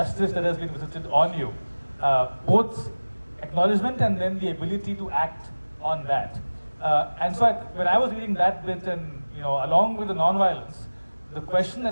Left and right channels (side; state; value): both; inverted; correlation -1.00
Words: that has been visited on you, both acknowledgement and then the ability to act on that. And so when I was reading that bit and, along with the non-violence, the question